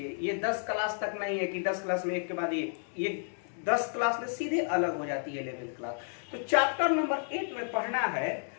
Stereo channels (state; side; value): silent; right; 57 dB below the other